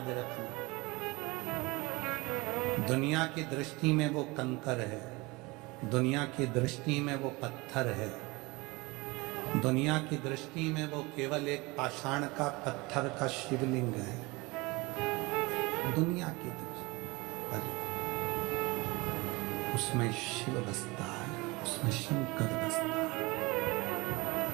रखना दुनिया की दृष्टि में वो कंकर है, दुनिया की दृष्टि में वो पत्थर है, दुनिया की दृष्टि में वो केवल एक पाषाण का पत्थर का शिवलिंग है। दुनिया की दृष्टि पर उसमें शिव बसता है, उसमें शंकर बसता है,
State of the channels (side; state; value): left; quieter; 24.1 dB